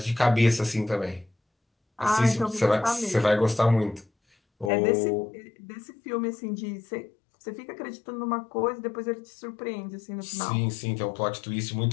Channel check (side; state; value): right; drops out; at 4.7 s